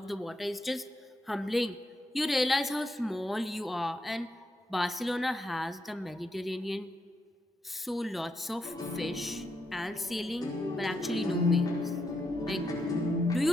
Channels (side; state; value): both; normal; correlation 0.81